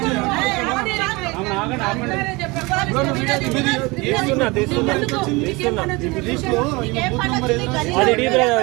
చేయాలి. తీస్తున్నా తీస్తున్నా తీస్తున్నా. అది డీ బ్రదర్,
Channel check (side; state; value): left; quieter; 24.7 dB